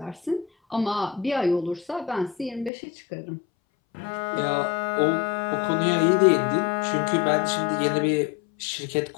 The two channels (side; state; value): right; drops out; at 2.7 s